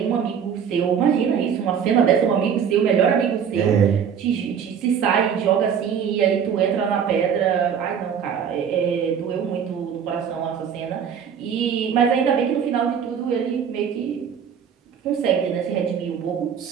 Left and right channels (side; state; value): left; quieter; 7.7 dB